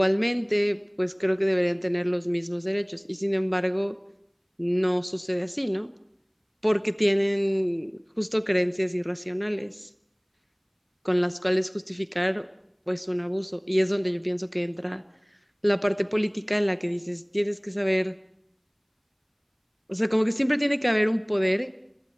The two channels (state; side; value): identical; both; correlation 1.00